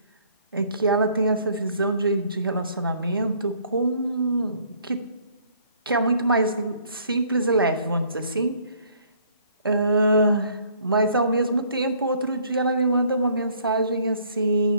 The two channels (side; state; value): both; inverted; correlation -0.60